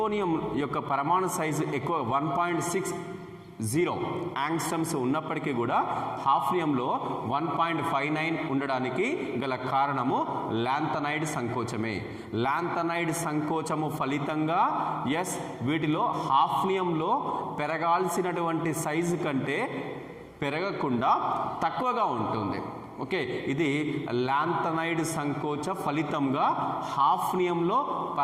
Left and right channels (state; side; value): identical; both; correlation 1.00